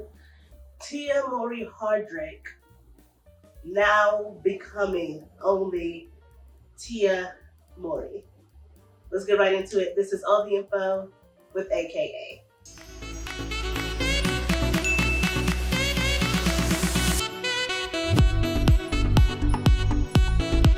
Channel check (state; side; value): identical; both; correlation 1.00